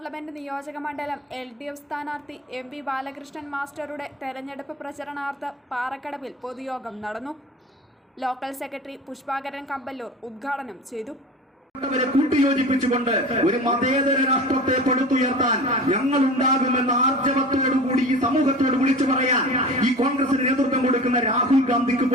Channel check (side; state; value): both; normal; correlation 0.35